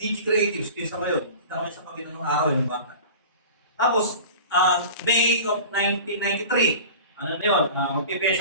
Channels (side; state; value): both; inverted; correlation -0.38